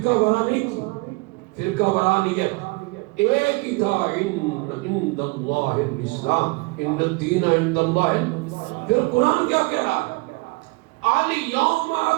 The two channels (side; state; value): left; quieter; 26.5 dB